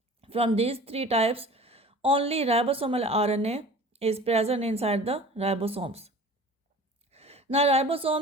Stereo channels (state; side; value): normal; both; correlation 0.42